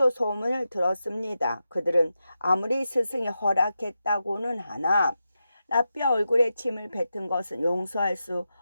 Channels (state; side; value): inverted; both; correlation -0.89